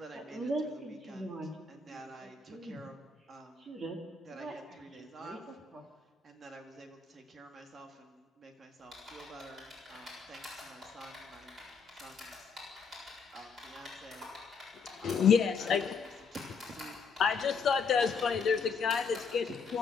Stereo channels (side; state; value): right; quieter; 5.3 dB